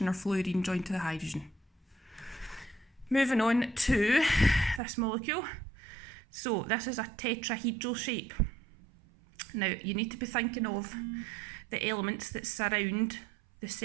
or fluorine joined to the hydrogen. Moving on to this molecule. So this is a tetrahedral shape. Now you need to be thinking of the elements that surround the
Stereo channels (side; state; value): left; drops out; at 4.8 s